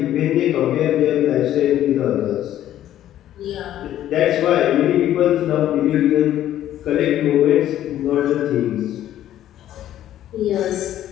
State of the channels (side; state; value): right; quieter; 12.2 dB